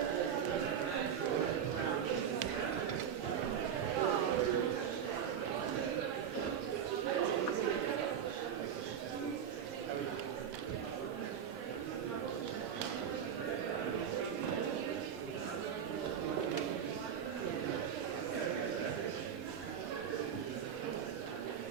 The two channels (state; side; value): quieter; left; 8.3 dB